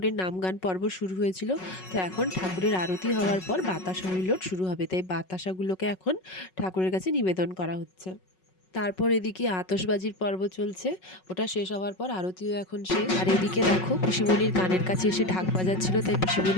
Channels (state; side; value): late; right; 5.4 ms